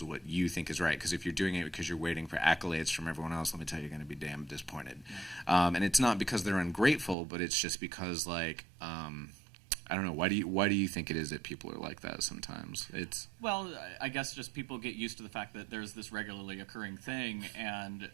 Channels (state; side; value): drops out; left; at 7.2 s